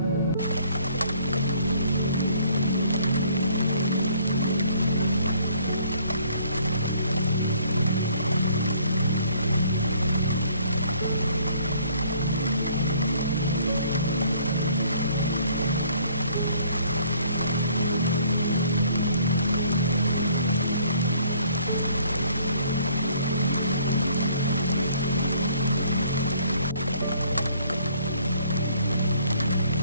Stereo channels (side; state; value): both; inverted; correlation -0.60